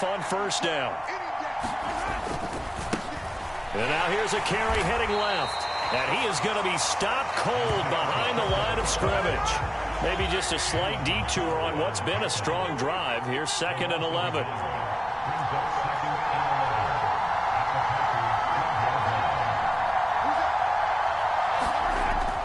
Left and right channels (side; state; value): both; identical; correlation 1.00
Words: on first down. And now here's a carry heading left. And he is going to be stopped cold behind the line of scrimmage. Maybe just a slight detour on what's been a strong drive. Here's 2nd and 11.